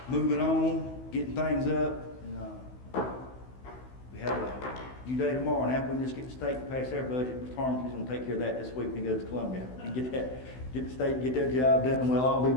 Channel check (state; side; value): late; right; 16 ms